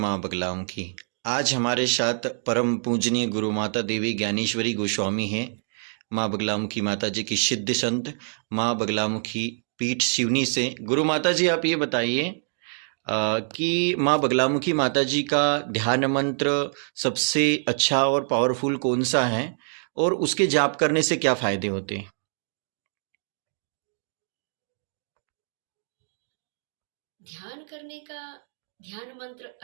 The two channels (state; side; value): silent; left; digital silence